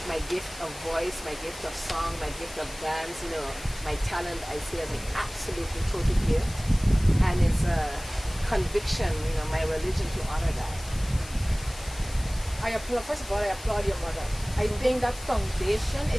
my gift of voice, my gift of song, my gift of dance, you know, my talent, I see as an absolutely total gift. And it's a conviction, you know, my religion to honor that. First of all, I applaud your mother. I think that foundation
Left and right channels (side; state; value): left; noise; hiss, 16 dB below the sound